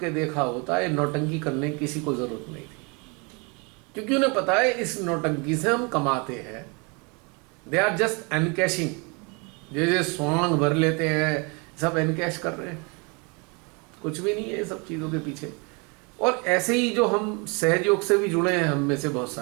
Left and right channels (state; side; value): quieter; left; 31.2 dB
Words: देखा होता है, नौटंकी करने की किसी को जरूरत नहीं थी, क्योंकि उन्हें पता है इस नौटंकी से हम कमाते हैं। दे आर जस्ट एनकैशिंग, जैसे स्वांग भर लेते हैं, सब एनकैश कर रहे हैं, कुछ भी नहीं है सब चीज़ों के पीछे। और ऐसे ही जो हम सहयोग से भी जुड़े हैं, हम में से बहुत